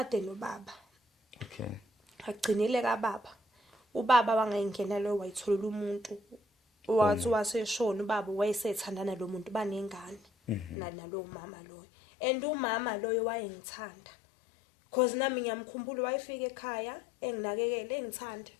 nobaba. Okay. Agcinile kaBaba. Ubaba wangayingena lo wayitholela umuntu wathi waseshona ubaba wayesethandana lo muntu banengane nalo mama loyo. And umama loyo wayengithanda. Cause nami ngiyamkhumbula wayefika ekhaya enginakekele engithanda.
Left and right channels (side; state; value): right; drops out; at 10.8 s